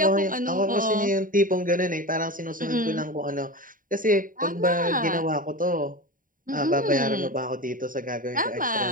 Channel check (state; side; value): late; left; 0.39 ms